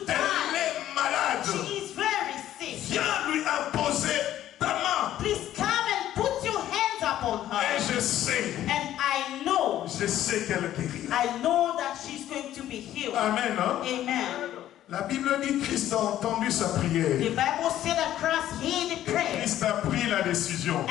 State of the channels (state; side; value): quieter; right; 12.5 dB